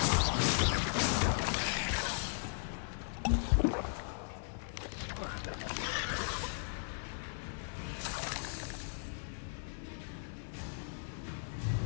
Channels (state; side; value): silent; right; 53 dB below the other